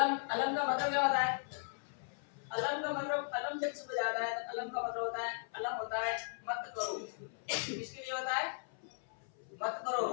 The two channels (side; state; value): right; silent; 53 dB below the other